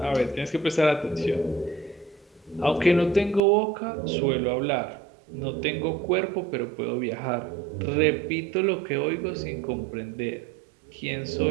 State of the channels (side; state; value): left; drops out; at 3.4 s